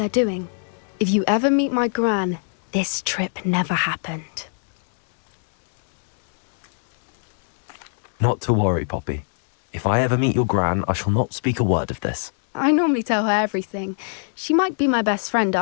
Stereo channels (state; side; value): silent; right; 61 dB below the other